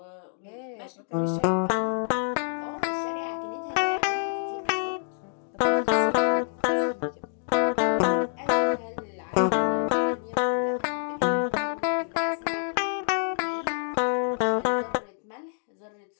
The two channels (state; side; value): silent; right; 60 dB below the other